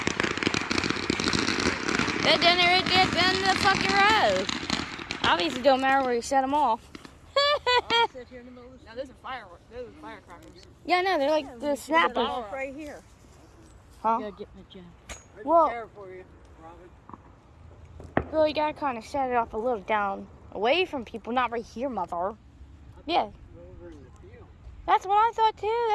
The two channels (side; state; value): both; identical; correlation 1.00